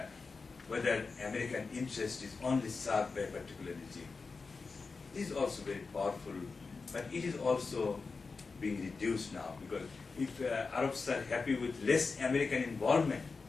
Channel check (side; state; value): right; quieter; 4.4 dB